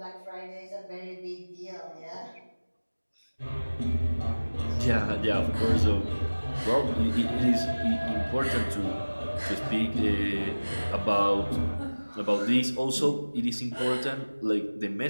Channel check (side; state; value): both; inverted; correlation -1.00